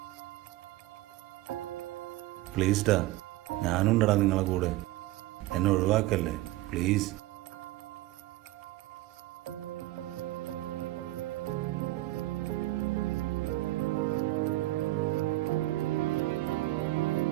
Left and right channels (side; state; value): left; quieter; 17.6 dB